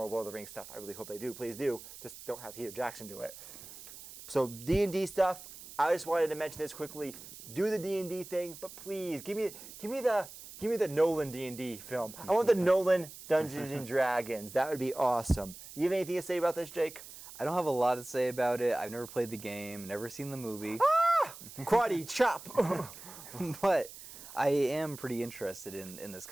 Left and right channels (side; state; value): right; noise; hiss, 15 dB below the sound